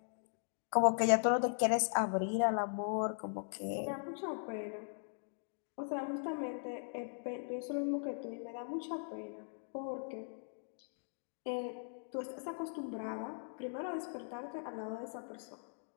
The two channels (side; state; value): right; silent; digital silence